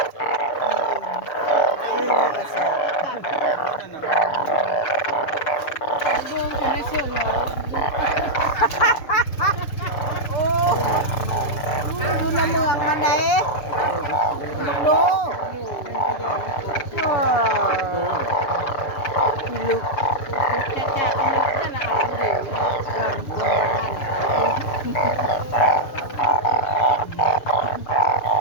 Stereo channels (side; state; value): right; late; 6.9 ms